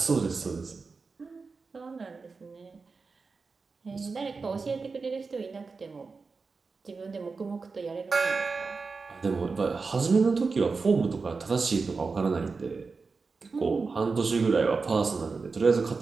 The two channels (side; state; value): left; quieter; 4.5 dB